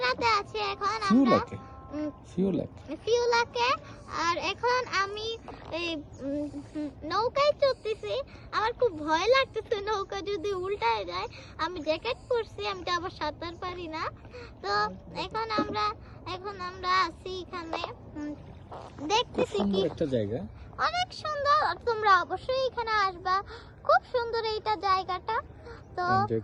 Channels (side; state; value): both; identical; correlation 1.00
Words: আছি এখন আমরা ফিউলাকে। আর এখন আমি এই নৌকায় চড়তেছি। আমার খুব ভয় লাগতেছে নৌকা যদি উল্টায় যায়। আমি জ্যাকেট পরছি, আমি তো আবার সাঁতার পারি না। তো এখন আমরা আছি এখানে, দেখতেছি কি একটা জায়গা, অনেক সুন্দর। তোমরা অবশ্যই এখানে আসবা, খুব সুন্দর এইটা জায়গাটা। তো এনজয়